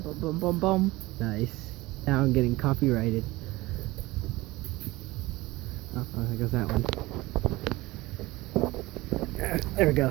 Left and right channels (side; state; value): left; quieter; 20.0 dB